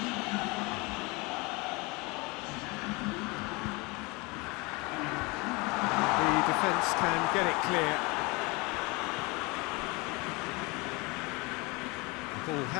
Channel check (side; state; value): right; quieter; 26.4 dB